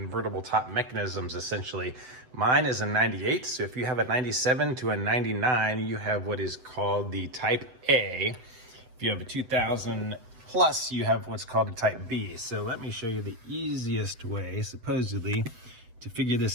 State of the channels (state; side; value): late; left; 8.0 ms